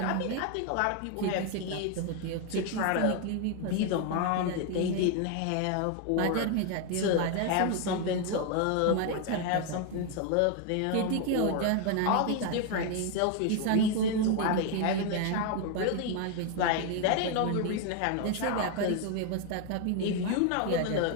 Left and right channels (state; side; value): different; both; correlation 0.01